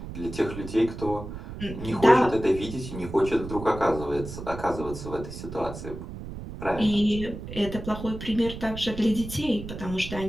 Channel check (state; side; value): noise; right; rumble, 10 dB below the sound